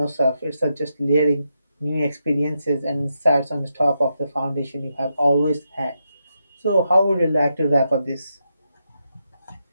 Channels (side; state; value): both; inverted; correlation -0.84